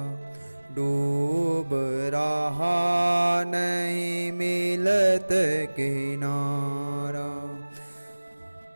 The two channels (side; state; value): both; inverted; correlation -1.00